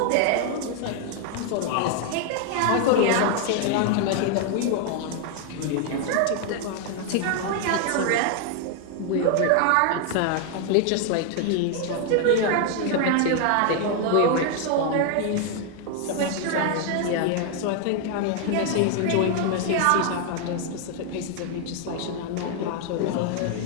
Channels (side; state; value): both; different; correlation 0.00